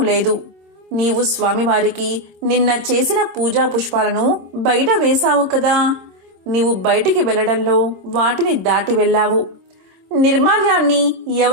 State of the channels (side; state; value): left; late; 26 ms